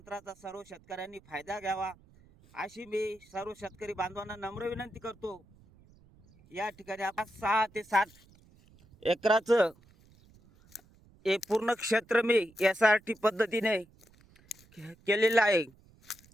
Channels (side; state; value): right; noise; rumble, 28 dB below the sound